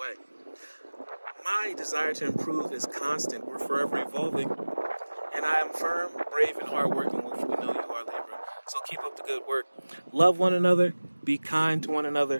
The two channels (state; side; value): inverted; both; correlation -1.00